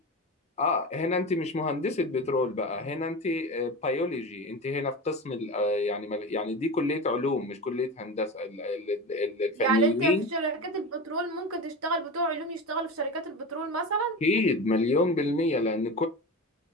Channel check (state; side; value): normal; both; correlation 0.27